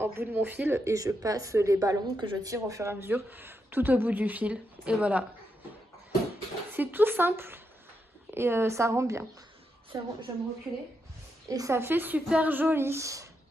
bout de mon fil et je passe les ballons que je tire au fur et à mesure tout au bout du fil. Et voilà. C'est tout simple et ça rend bien. Je vais me reculer. Et ça fait super joli.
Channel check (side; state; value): both; normal; correlation 0.83